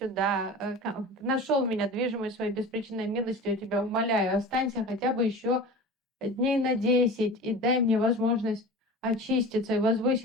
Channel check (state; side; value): normal; both; correlation 0.34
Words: нашел меня, движимый своей беспричинной милостью, я тебя умоляю, останься хотя бы еще дней на 10 и дай мне возможность очиститься и